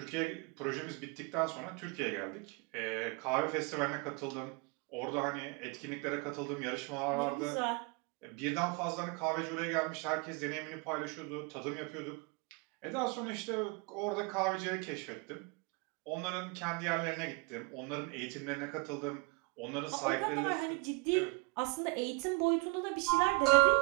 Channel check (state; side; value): quieter; left; 26.9 dB